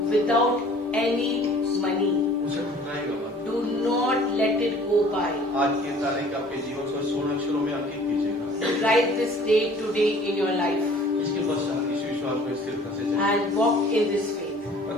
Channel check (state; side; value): normal; both; correlation 0.51